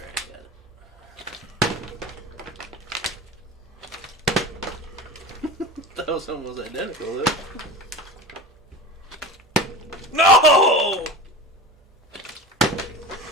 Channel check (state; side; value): normal; both; correlation 0.31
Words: got it. That was almost identical, though. No!